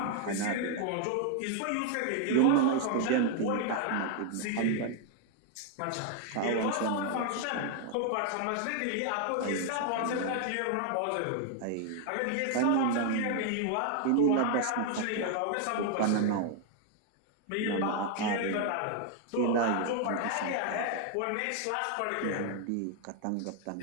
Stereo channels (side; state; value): both; different; correlation 0.00